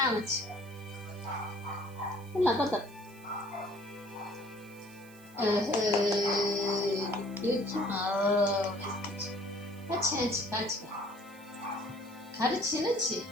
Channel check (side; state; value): right; noise; hiss, 24 dB below the sound